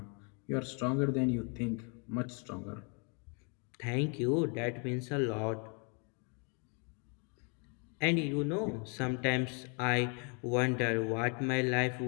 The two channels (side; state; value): right; quieter; 36.6 dB